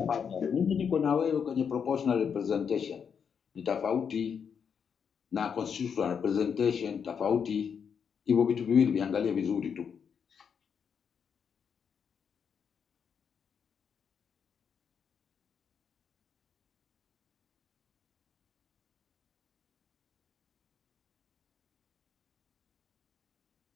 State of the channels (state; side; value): quieter; right; 7.0 dB